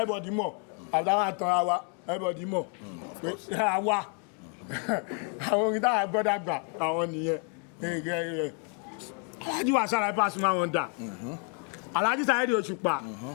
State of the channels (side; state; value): right; quieter; 40.0 dB